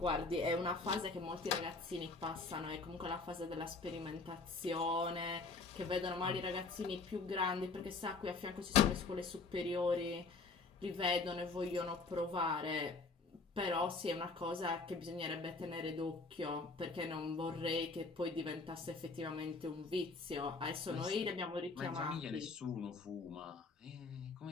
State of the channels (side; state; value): right; quieter; 4.0 dB